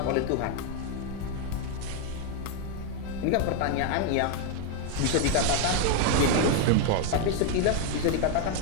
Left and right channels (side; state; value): both; different; correlation 0.01